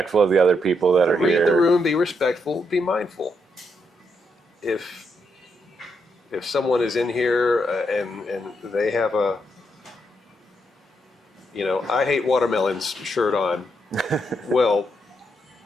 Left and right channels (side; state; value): both; normal; correlation 0.79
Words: of the other people that are read here. the room, be respectful, be mindful. If someone is in here and they have a I hate watermelons shirt on, well,